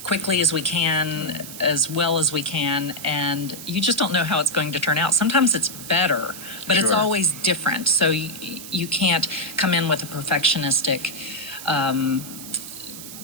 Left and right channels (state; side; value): noise; right; hiss, 12 dB below the sound